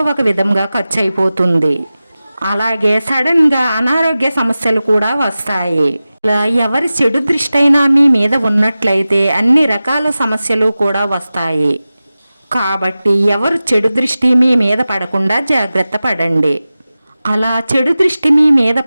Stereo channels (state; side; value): inverted; both; correlation -0.95